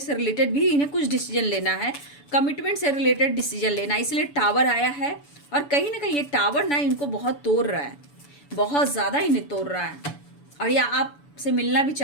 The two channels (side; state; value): right; late; 7.0 ms